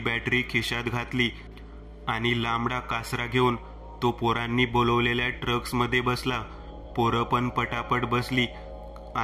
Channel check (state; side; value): identical; both; correlation 1.00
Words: खिशात घातली आणि लांबडा कासरा घेऊन तो पोरांनी बोलवलेल्या ट्रक्समध्ये बसला. पोरं पण पटापट बसली